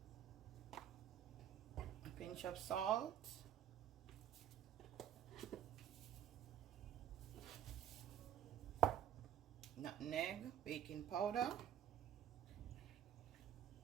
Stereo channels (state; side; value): quieter; left; 10.3 dB